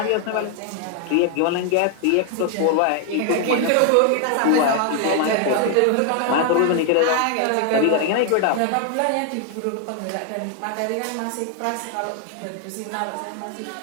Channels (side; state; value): both; different; correlation 0.00